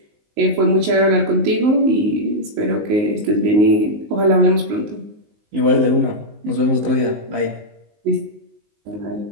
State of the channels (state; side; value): late; left; 19 ms